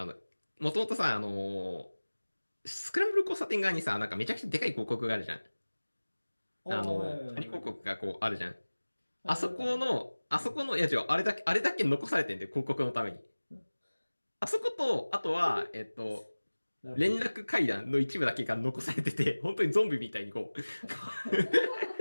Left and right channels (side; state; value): both; inverted; correlation -1.00